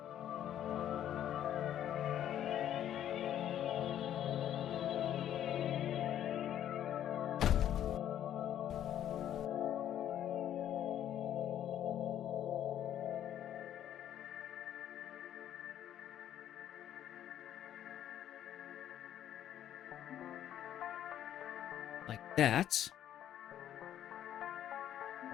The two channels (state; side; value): quieter; right; 10.9 dB